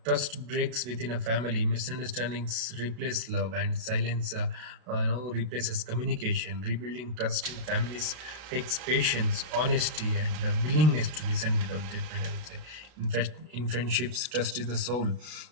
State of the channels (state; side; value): late; left; 32 ms